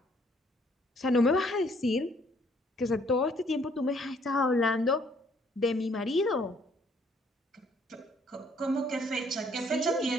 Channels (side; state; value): both; normal; correlation 0.64